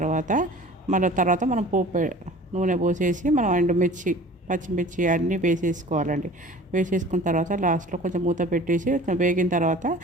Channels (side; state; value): both; normal; correlation 0.44